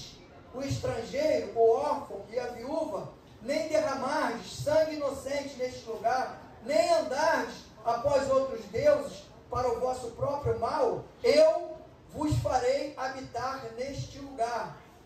o estrangeiro, o órfão e a viúva, nem derramardes sangue inocente neste lugar, nem andardes após outros deuses para o vosso próprio mal, eu vos farei habitar neste lugar,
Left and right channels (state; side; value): identical; both; correlation 1.00